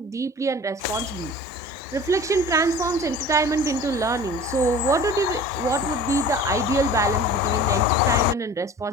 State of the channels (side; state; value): both; normal; correlation 0.41